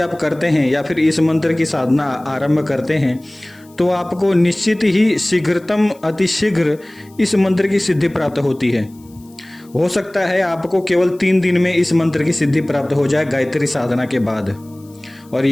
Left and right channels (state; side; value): noise; left; hiss, 29 dB below the sound